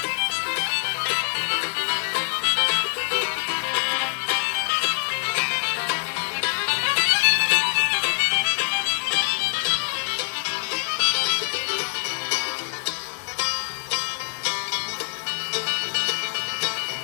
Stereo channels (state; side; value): silent; right; 62 dB below the other